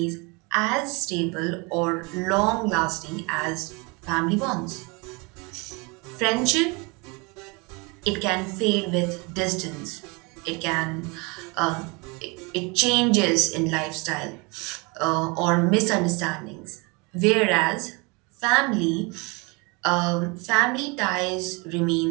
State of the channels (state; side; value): quieter; left; 28.8 dB